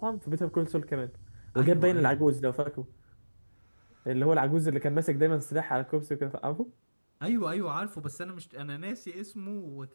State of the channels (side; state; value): both; inverted; correlation -1.00